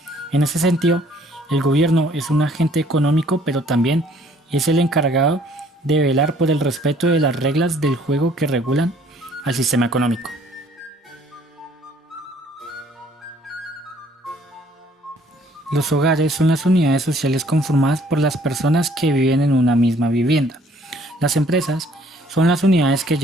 En ese sentido, el gobierno es un agente económico, pero también es el encargado de velar por el respeto de las reglas del juego que regulan al sistema económico. Los hogares son las unidades sociales conformadas por las personas que viven en una misma vivienda. Las empresas son las unidades que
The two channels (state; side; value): normal; both; correlation 0.60